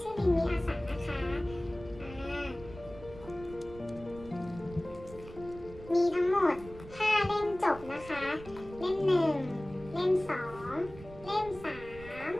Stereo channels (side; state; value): right; noise; rumble, 16 dB below the sound